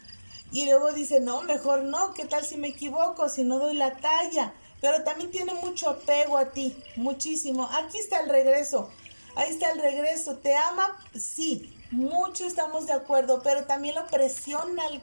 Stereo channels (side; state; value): both; inverted; correlation -1.00